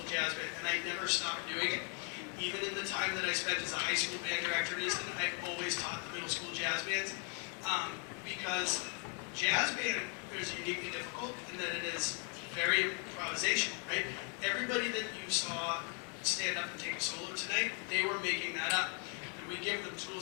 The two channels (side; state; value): right; quieter; 39.8 dB